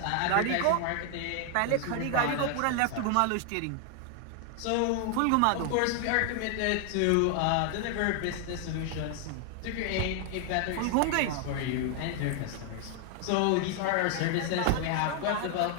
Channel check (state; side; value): different; both; correlation 0.00